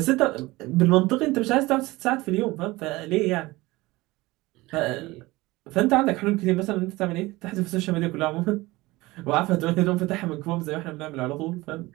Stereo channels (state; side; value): quieter; left; 20.5 dB